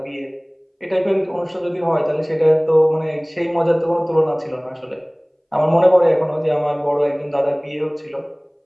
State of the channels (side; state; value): both; identical; correlation 1.00